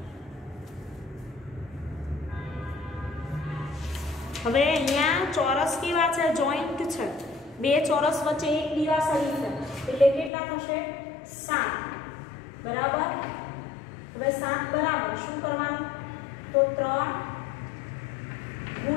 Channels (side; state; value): right; drops out; at 10.3 s